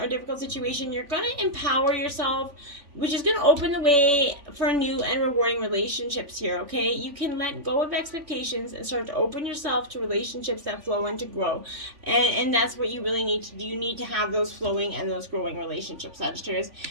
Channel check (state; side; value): late; left; 3.5 ms